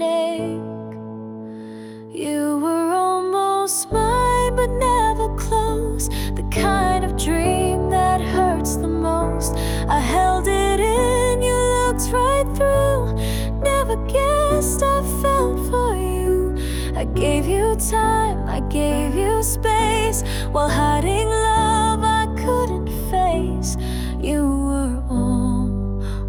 You were almost mine, but never close. The kind of dream that hurts the most. I held it in, you looked right through. Never guessed I felt for you. I gave you time, I gave you space, while hiding love I couldn't face. You were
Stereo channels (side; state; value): both; identical; correlation 1.00